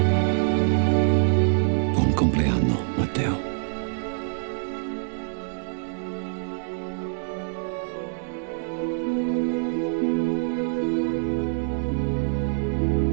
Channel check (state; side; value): silent; left; digital silence